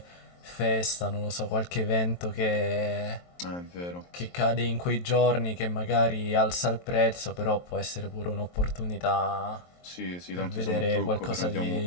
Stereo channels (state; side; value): late; right; 23 ms